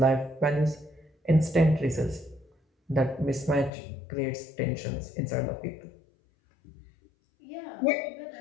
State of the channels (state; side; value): drops out; right; at 3.7 s